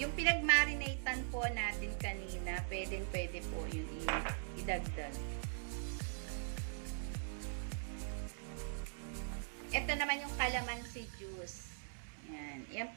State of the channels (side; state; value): left; silent; digital silence